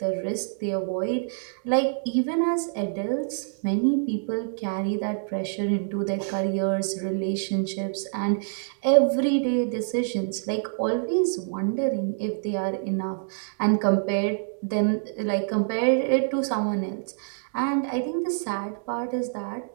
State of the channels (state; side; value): silent; left; digital silence